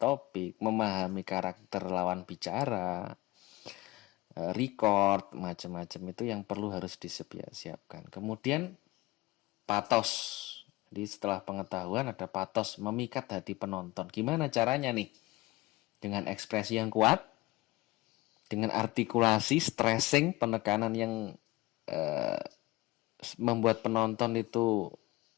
memahami karakter lawan bicara, record, macam-macam itu yang perlu harus disiapkan. Kemudian patos. Jadi setelah pengetahuan ada patos, memikat hati penonton. Gimana caranya nih? Dengan ekspresi yang kuat, dengan artikulasi, stressing, penekanan yang membuat penonton itu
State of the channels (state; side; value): quieter; right; 20.1 dB